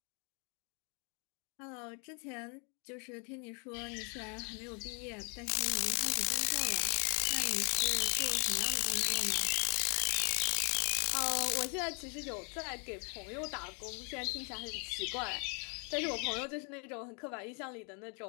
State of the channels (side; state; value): right; quieter; 37.0 dB